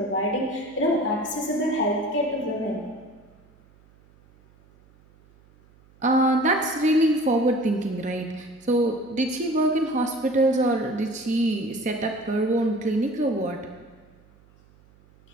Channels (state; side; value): noise; right; hum, 29 dB below the sound